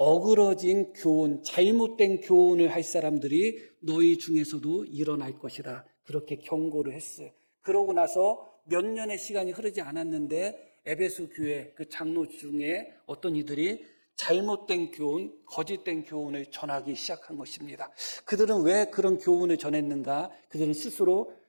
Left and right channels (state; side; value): inverted; both; correlation -1.00